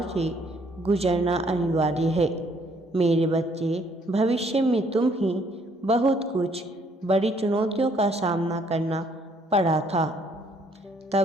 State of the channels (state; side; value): normal; both; correlation 0.65